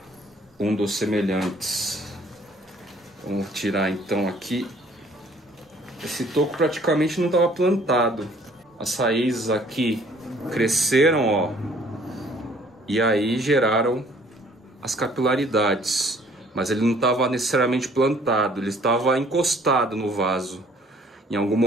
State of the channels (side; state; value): both; normal; correlation 0.57